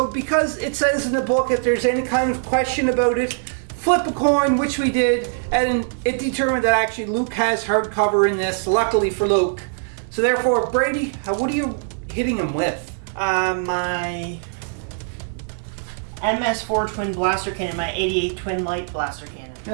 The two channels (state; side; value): silent; left; digital silence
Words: because it says in the book, if there's any kind of question about it, flip a coin, which we did, and it determined that actually Luke has hard cover in this, luckily for Luke. So therefore, Brady, what are you hitting him with? My MS4 twin blaster cannon, my 88 twin light blaster cannon.